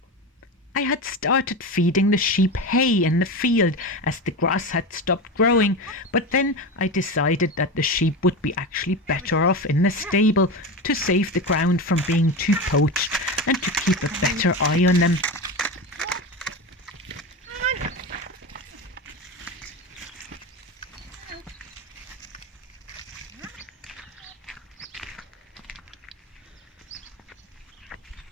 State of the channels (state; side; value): normal; both; correlation 0.22